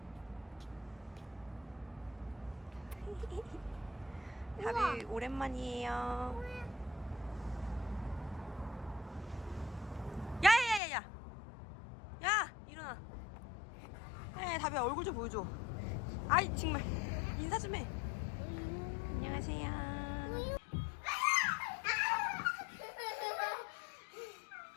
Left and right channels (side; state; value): right; drops out; at 10.8 s